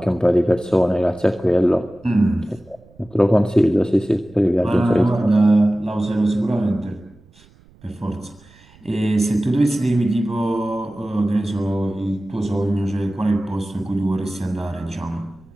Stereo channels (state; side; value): noise; right; rumble, 28 dB below the sound